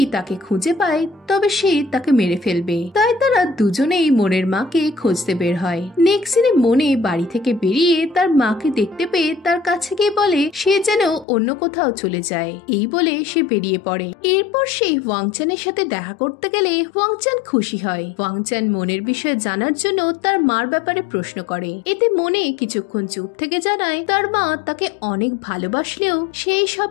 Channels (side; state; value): right; drops out; at 11.2 s